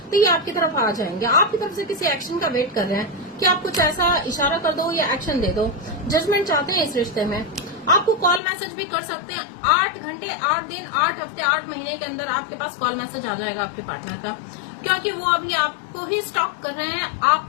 तो ये आपकी तरफ आ जाएंगे। आपकी तरफ से किसी एक्शन का वेट कर रहे हैं कि आप कुछ ऐसा इशारा कर दो या एक्शन दे दो। जजमेंट चाहते हैं इस रिश्ते में। आपको कॉल मैसेज भी कर सकते हैं, 8 घंटे 8 दिन 8 हफ्ते 8 महीने के अंदर आपके पास कॉल मैसेज आ जाएगा आपके पार्टनर का, क्योंकि वो अभी आपको ही स्टॉक कर रहे हैं,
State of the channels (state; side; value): drops out; right; at 8.4 s